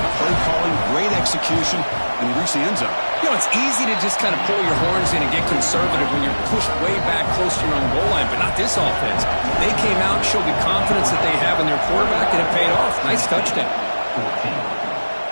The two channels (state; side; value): inverted; both; correlation -1.00